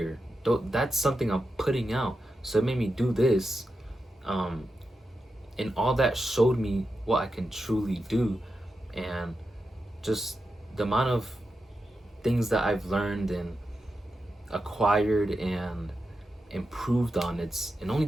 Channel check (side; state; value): both; normal; correlation 0.89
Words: that's something I'm putting out. So it made me do this. And all that showed me what I can truly do. And just the amount of things that I've learned and acquired and improved on, it's in only